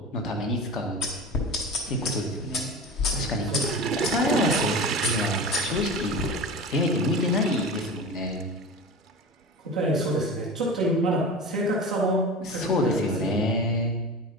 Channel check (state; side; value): normal; both; correlation 0.31